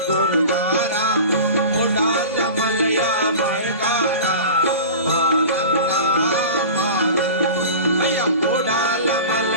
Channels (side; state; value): both; inverted; correlation -0.35